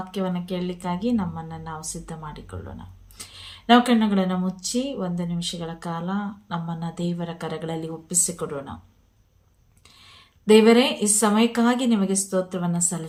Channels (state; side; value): identical; both; correlation 1.00